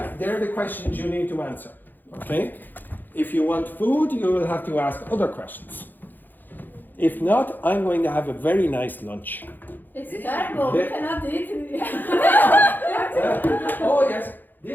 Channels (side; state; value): right; late; 0.088 ms